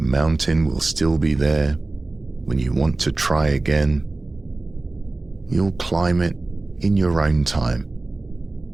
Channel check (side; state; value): left; quieter; 3.1 dB